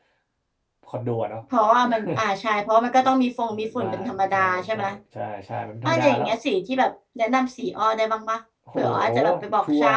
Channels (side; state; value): both; identical; correlation 1.00